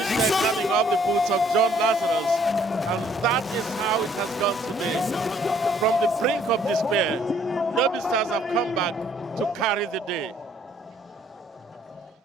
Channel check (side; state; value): both; normal; correlation 0.62